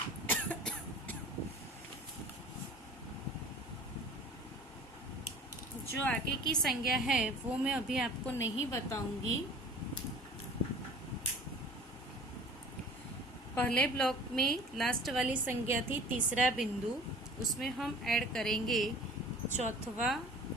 जो आगे की संज्ञा है वो मैं अभी आपको नहीं बताऊंगी। पहले ब्लॉक में लास्ट वाली संज्ञा थी तीसरा बिंदु, उसमें हम ऐड करेंगे चौथवा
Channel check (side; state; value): both; normal; correlation 0.44